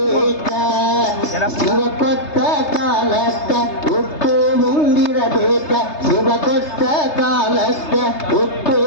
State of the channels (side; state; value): right; late; 3.3 ms